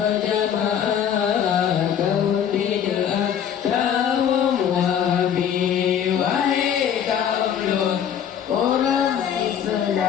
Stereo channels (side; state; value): right; quieter; 8.9 dB